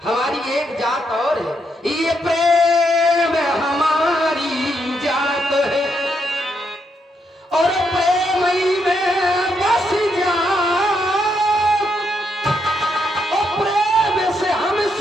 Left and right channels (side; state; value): both; normal; correlation 0.78